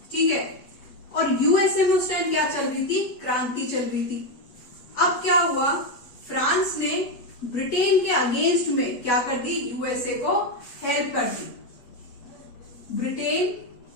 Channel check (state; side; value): late; right; 8.3 ms